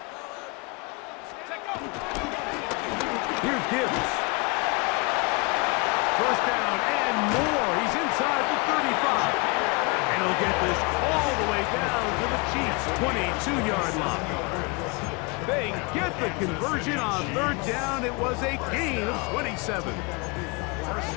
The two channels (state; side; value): quieter; right; 29.2 dB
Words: Here's Gibbs. First down and more. He's inside the 35. And he'll get this all the way down to the Chiefs' 22-yard line. They get the conversion on third down. It was a gain of 27. First